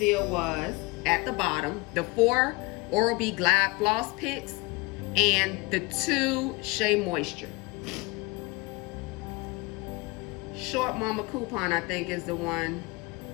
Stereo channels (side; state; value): right; quieter; 25.3 dB